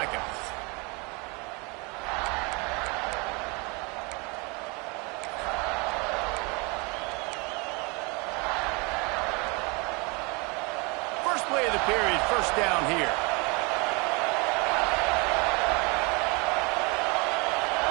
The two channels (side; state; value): left; quieter; 29.4 dB